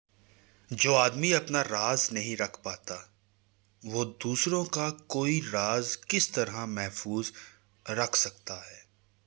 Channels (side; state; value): left; quieter; 28.9 dB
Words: جو آدمی اپنا راز نہیں رکھ پاتا، وہ دوسروں کا کوئی راز کس طرح محفوظ رکھ سکتا ہے؟